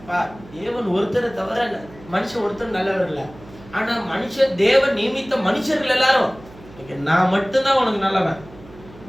தேவன் ஒருத்தரை தவிர மனுஷன் ஒருத்தர் நல்லவர் இல்ல. ஆனா மனுஷன் தேவன் நியமித்த மனுஷர்கள் எல்லாரும் நான் மட்டும்தான் உனக்கு நல்லவன்,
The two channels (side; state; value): right; noise; hum, 20 dB below the sound